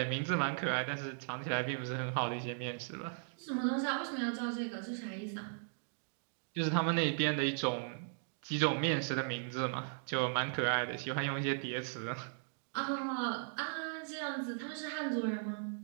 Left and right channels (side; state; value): left; silent; digital silence